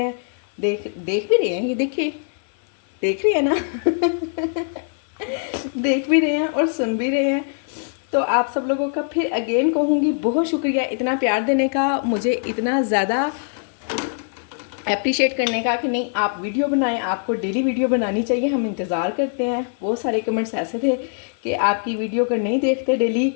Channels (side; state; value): right; silent; 57 dB below the other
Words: देख भी रहे हैं, ये देखिए, देख रहे हैं ना देख भी रहे हैं और सुन भी रहे हैं। तो आप सब लोगों का फिर अगेन कहूँगी बहुत शुक्रिया इतना प्यार देने का, मुझे इतना ज़्यादा अप्रिशिएट करने का कि नहीं आप वीडियो बनाएं, आपको डेली वीडियो बनानी चाहिए, हम इंतज़ार करते हैं। बहुत सारे कमेंट्स ऐसे थे कि आपकी वीडियो अगर नहीं देखते डेली